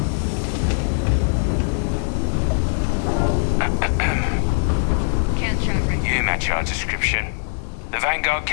Can't chat right now. You match our description. The Vanguard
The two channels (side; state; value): right; silent; digital silence